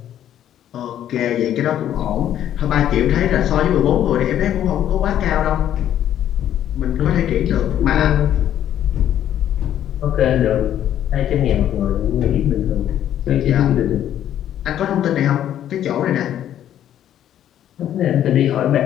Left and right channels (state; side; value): quieter; right; 11.0 dB